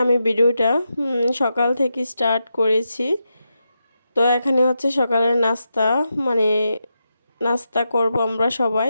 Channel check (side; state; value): both; inverted; correlation -0.86